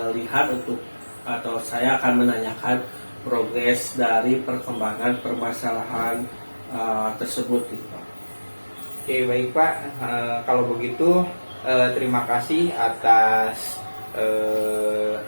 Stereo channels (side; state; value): both; inverted; correlation -1.00